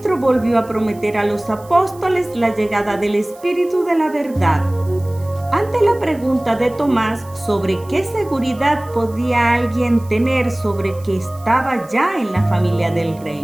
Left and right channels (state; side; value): noise; right; hiss, 25 dB below the sound